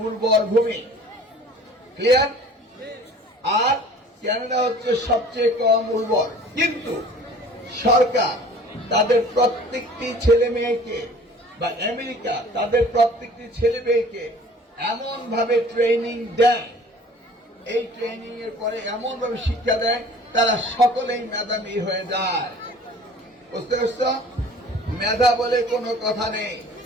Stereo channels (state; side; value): normal; both; correlation 0.47